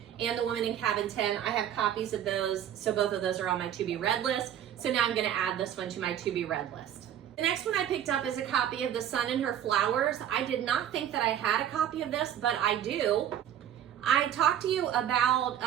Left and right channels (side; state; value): left; quieter; 10.3 dB